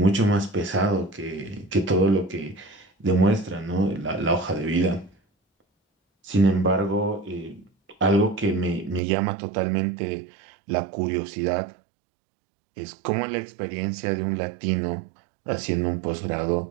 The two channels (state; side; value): drops out; left; at 9.0 s